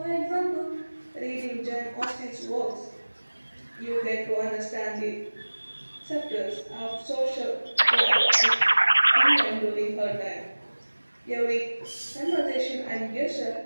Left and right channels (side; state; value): both; inverted; correlation -1.00